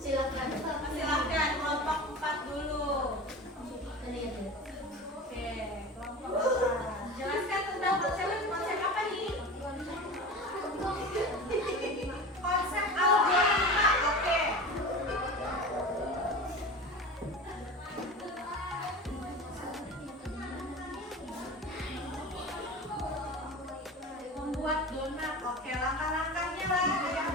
Silakan kelompok 4 dulu. Oke, kelompok 4. Jelaskan tentang konsep apa nih? Konsep algoritma. Oke. Membuat donat. Oke, langkah-langkahnya lah. Ada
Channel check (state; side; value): normal; both; correlation 0.31